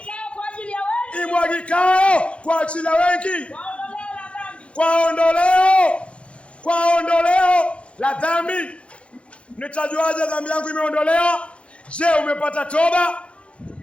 kwa ajili ya wengi. Imwagikayo kwa ajili ya wengi. Kwa ondoleo la dhambi. Kwa ondoleo la dhambi. Nitajuaje dhambi yangu imeondolewa? Je, umepata toba?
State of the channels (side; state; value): right; late; 0.060 ms